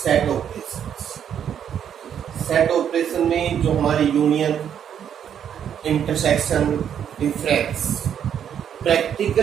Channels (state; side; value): quieter; left; 8.9 dB